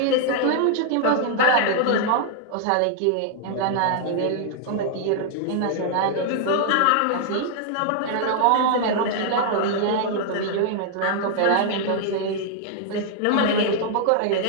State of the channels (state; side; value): different; both; correlation -0.01